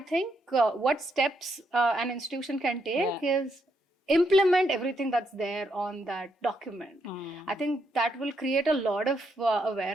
think what steps an institution can take is implement everything that's there on that document. I think that will create a lot of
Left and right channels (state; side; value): normal; both; correlation 0.78